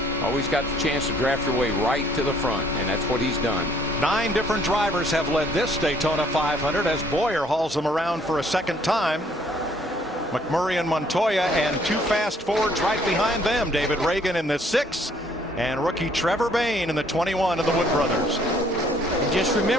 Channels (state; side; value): normal; both; correlation 0.63